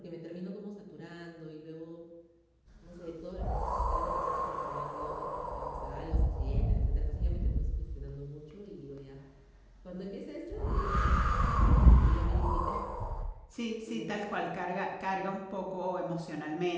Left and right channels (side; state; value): both; identical; correlation 1.00